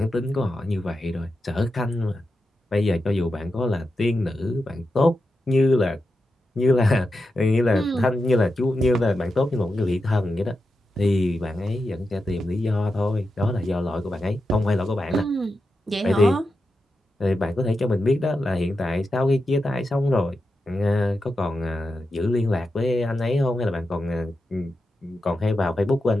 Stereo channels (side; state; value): both; normal; correlation 0.89